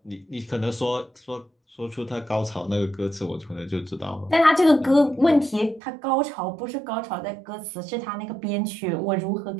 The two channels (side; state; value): left; drops out; at 5.8 s